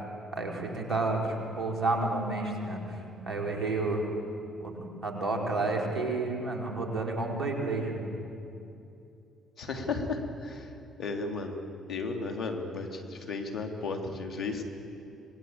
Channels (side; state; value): both; normal; correlation 0.51